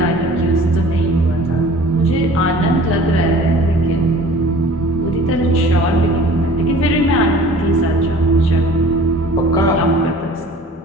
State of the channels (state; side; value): normal; both; correlation 0.47